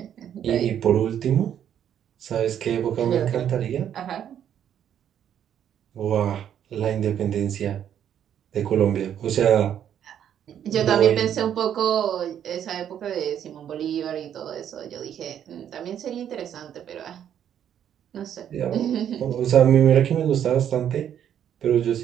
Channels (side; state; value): left; quieter; 9.7 dB